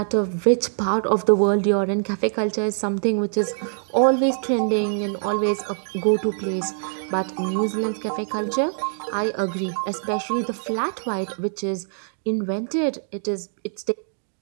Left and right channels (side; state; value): left; silent; digital silence